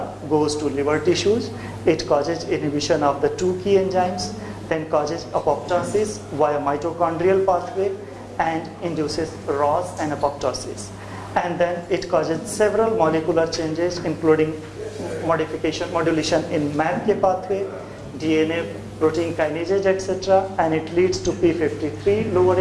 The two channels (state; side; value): identical; both; correlation 1.00